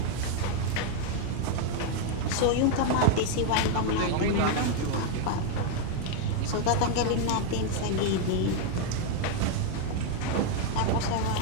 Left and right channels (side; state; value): both; different; correlation 0.01